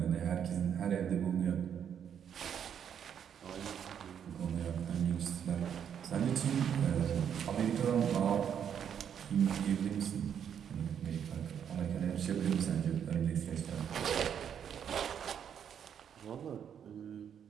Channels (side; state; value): left; quieter; 8.4 dB